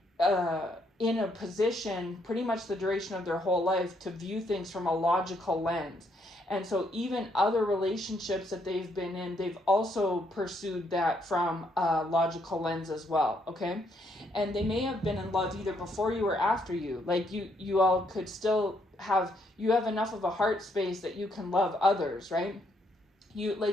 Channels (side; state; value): both; normal; correlation 0.73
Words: in a position pretty much the duration of their whole life to view things from a logical lens. And so even other relationships that they've been in, they've also pursued that from a logical lens as well, okay? And they may have been in love either before you or after you. Like, you all could still have enough of a heart space that you can love others, right?